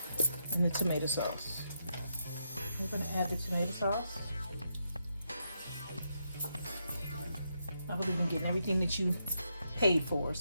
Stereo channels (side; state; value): both; inverted; correlation -0.81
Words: and the tomato sauce. We're going to add the tomato sauce. I believe in getting everything that you paid for,